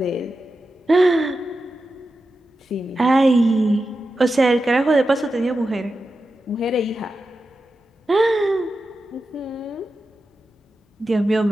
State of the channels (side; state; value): both; normal; correlation 0.91